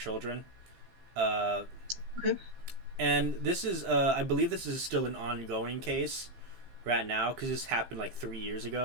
Uh, Okay. and this is, I believe, this is still an ongoing case right now because this happened like 3 years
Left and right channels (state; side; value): late; left; 15 ms